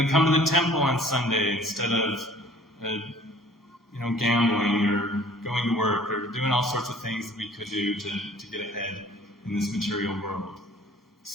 to come to the temple on Sunday instead of gambling or going to work or doing all sorts of things that we could do to get ahead in this material world.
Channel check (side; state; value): both; normal; correlation 0.52